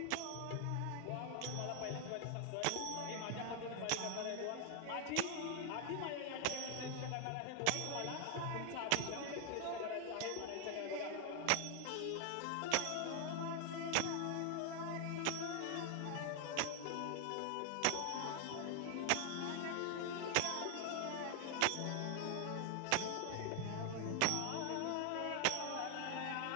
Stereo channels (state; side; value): different; both; correlation 0.00